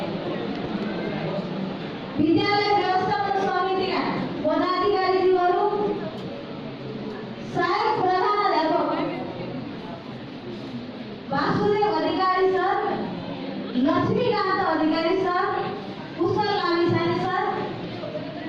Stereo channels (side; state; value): both; identical; correlation 1.00